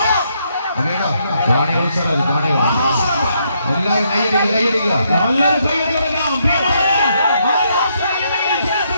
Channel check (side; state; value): both; inverted; correlation -0.75